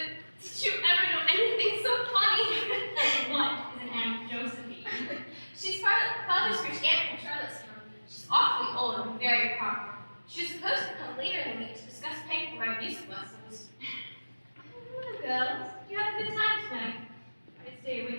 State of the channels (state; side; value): inverted; both; correlation -1.00